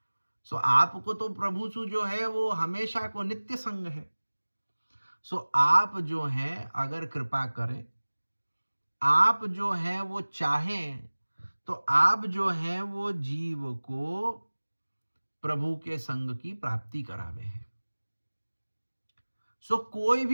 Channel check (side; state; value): both; inverted; correlation -1.00